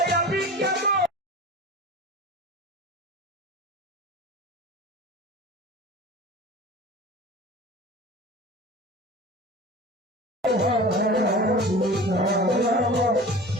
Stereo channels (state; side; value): normal; both; correlation 0.37